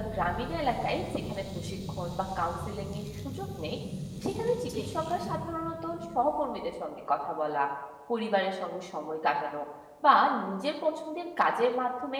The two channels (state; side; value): identical; both; correlation 1.00